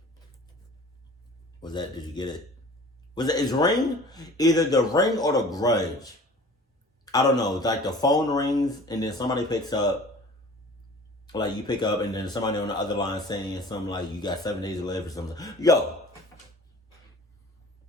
Did you get it? Is ring either the ring or the grudge? I don't know. It's like the phone rings and then somebody picks up. Like you pick up and then somebody on the other line saying something like you got 7 days to live or something. Yo.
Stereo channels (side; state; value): both; normal; correlation 0.45